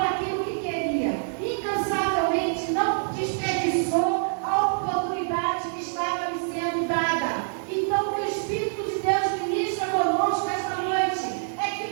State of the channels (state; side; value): silent; left; digital silence